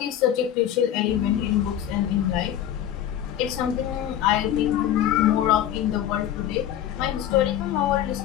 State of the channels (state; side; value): quieter; right; 11.0 dB